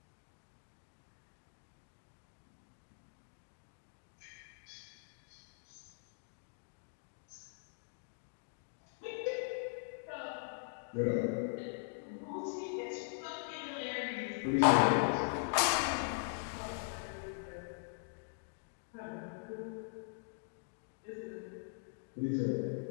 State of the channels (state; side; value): silent; right; digital silence